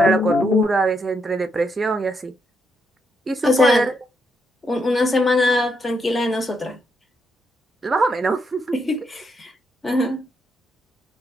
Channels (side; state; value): both; normal; correlation 0.78